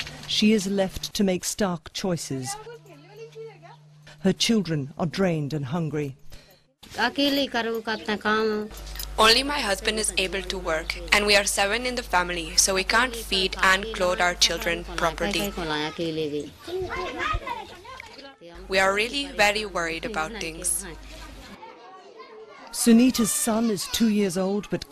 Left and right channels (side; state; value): both; identical; correlation 1.00